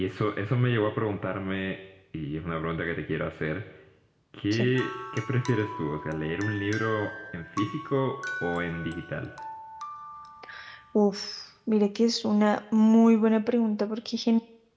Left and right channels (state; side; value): identical; both; correlation 1.00